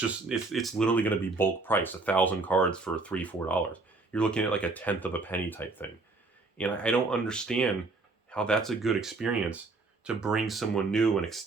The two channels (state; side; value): quieter; left; 3.6 dB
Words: literally going to be bulk price, 1,000 cards for $3, $4. You're looking at like a tenth of a penny type thing. And I don't understand how that's a good experience to bring someone new and